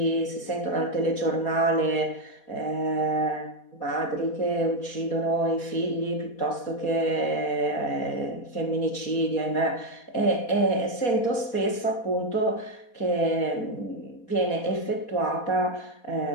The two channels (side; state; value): right; late; 4.2 ms